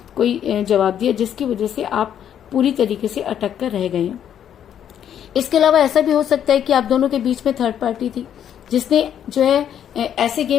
कोई जवाब दिया, जिसकी वजह से आप पूरी तरीके से अटक कर रह गए हैं। इसके अलावा ऐसा भी हो सकता है कि आप दोनों के बीच में थर्ड पार्टी थी, जिसने जो है ऐसे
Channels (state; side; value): quieter; right; 9.6 dB